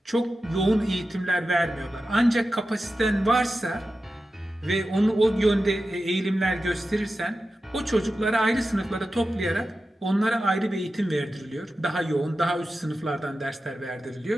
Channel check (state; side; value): normal; both; correlation 0.92